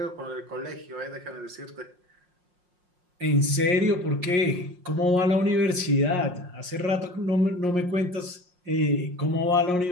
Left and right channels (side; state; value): left; late; 5.6 ms